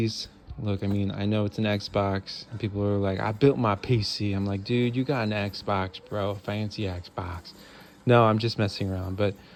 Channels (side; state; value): both; identical; correlation 1.00